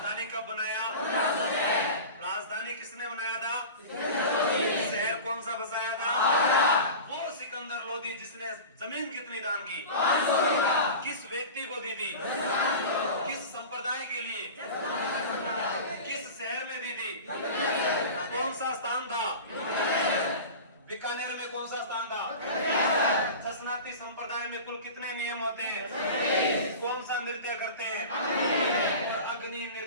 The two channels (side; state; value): both; inverted; correlation -0.33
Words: कब बनाया, राजधानी किसने बनाया था, शहर कौन सा बसाया था, वो सिकंदर लोधी जिसने जमीन कितनी दान की, किस व्यक्ति को दी थी, किस संप्रदाय के लिए, किस शहर में दी थी, कौन सा स्थान था, बीकानेर में कौन सा स्थान था, ससनाती संप्रदाय में कुल कितने नियम होते हैं, कौन सा नृत्य करते हैं, और अग्नि